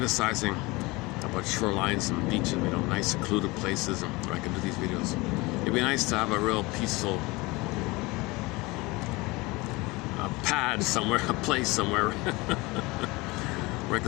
about shorelines and beaches, nice secluded places where I can do these videos. It'd be nice to have a real peaceful pad somewhere, a place somewhere where I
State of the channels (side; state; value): right; quieter; 23.2 dB